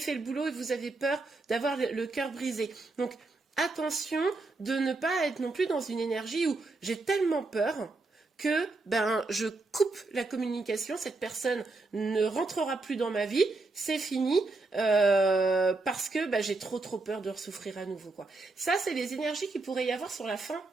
le boulot et vous avez peur d'avoir le cœur brisé. Donc, attention de ne pas être non plus dans une énergie où j'ai tellement peur que je coupe la communication, cette personne ne rentrera plus dans ma vie, c'est fini, parce que j'ai trop peur de souffrir à nouveau, quoi. Ça, c'est les énergies qu'il pourrait y avoir sur la fin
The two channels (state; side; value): quieter; left; 3.4 dB